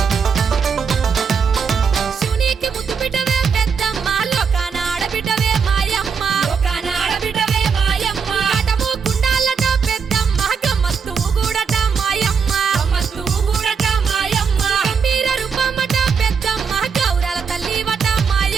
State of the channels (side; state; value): left; quieter; 6.0 dB